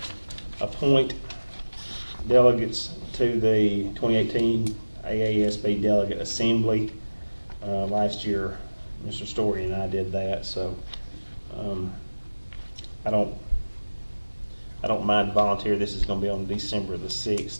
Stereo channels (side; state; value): both; inverted; correlation -1.00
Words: appoint delegates to the 2018 AASB Delegate Assembly. Last year, Mr. Story and I did that, so I don't mind volunteer. This is going to be on December the